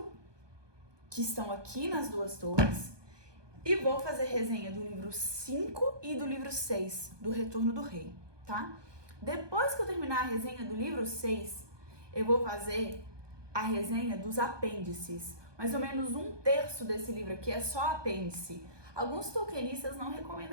que estão aqui nas Duas Torres, e vou fazer resenha do livro 5 e do livro 6, do Retorno do Rei, tá? Depois que eu terminar a resenha do livro 6, eu vou fazer a resenha dos apêndices. Mais ou menos 1/3 desse livro aqui é só apêndice. Alguns tolkienistas não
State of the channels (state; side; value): late; left; 1.2 ms